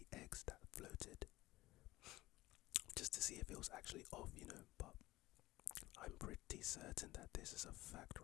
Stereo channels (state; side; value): quieter; right; 18.2 dB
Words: eggs that floated just to see if it was actually off, but I'm pretty certain that this is a fact